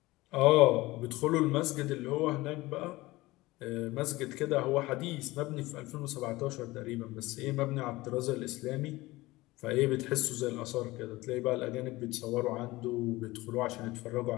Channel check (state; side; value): quieter; right; 19.8 dB